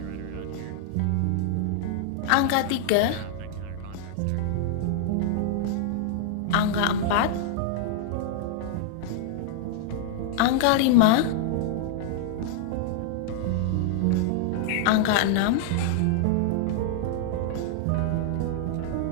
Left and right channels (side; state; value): both; different; correlation -0.01